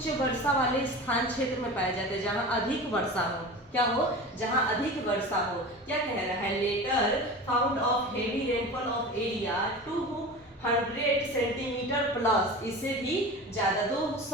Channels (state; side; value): normal; both; correlation 0.32